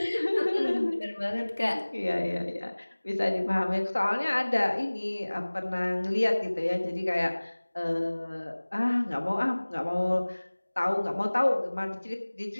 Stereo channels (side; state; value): both; inverted; correlation -1.00